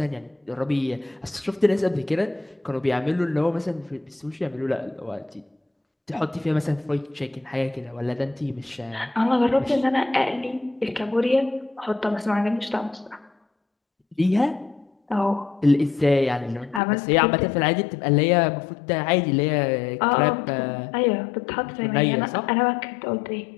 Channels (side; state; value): right; drops out; at 16.8 s